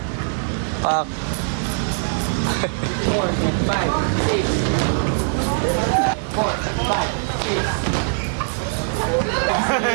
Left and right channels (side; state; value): left; silent; digital silence